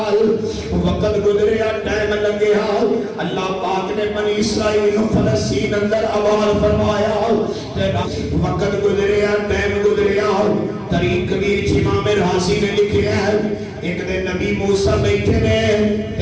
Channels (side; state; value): both; identical; correlation 1.00